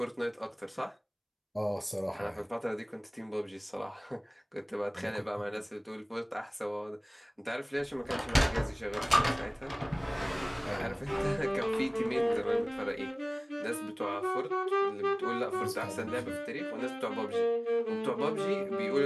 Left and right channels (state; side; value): identical; both; correlation 1.00